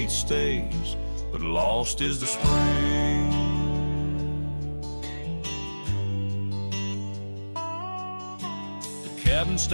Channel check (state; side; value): inverted; both; correlation -1.00